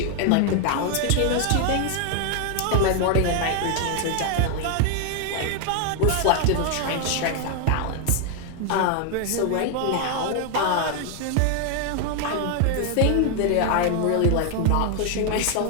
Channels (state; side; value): different; both; correlation 0.00